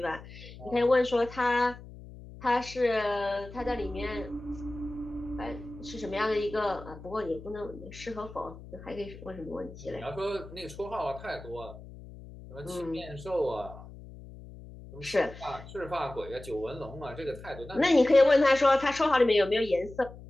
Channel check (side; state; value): left; noise; hum, 16 dB below the sound